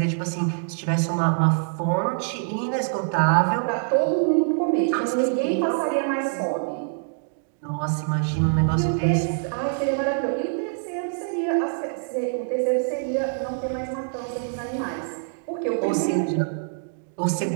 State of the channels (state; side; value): silent; left; digital silence